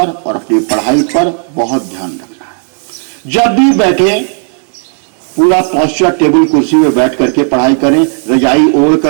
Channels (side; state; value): left; silent; 58 dB below the other